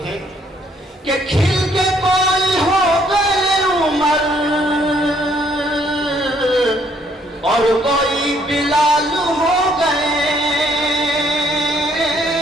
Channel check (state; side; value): normal; both; correlation 0.67